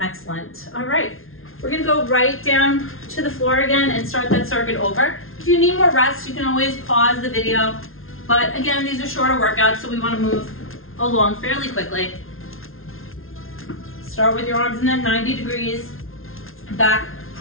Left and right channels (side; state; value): right; late; 0.61 ms